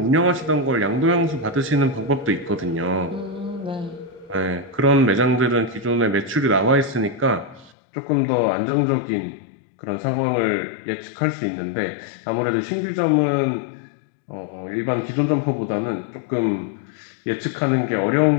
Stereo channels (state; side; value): drops out; right; at 7.7 s